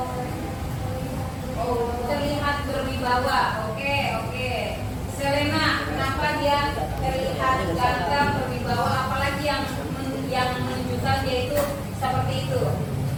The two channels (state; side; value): identical; both; correlation 1.00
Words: Oh, terlihat berwibawa. Oke. Selena, kenapa dia terlihat ganteng, berwibawa, apalagi yang menunjukkan dia itu seperti itu?